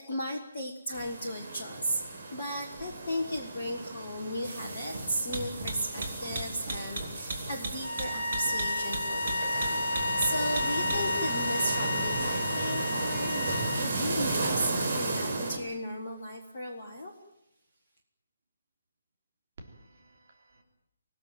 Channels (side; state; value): both; inverted; correlation -0.80